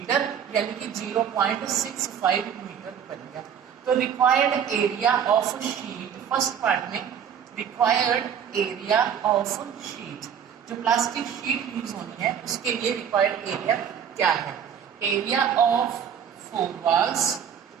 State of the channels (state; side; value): quieter; left; 8.2 dB